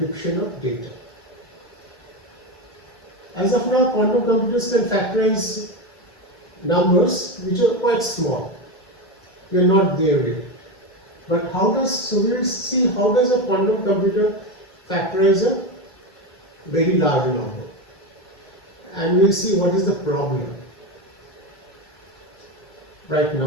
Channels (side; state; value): both; normal; correlation 0.16